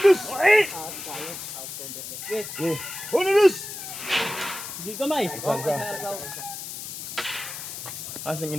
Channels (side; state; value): left; noise; hiss, 8 dB below the sound